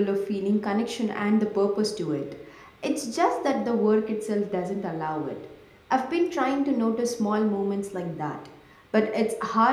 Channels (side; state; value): both; identical; correlation 1.00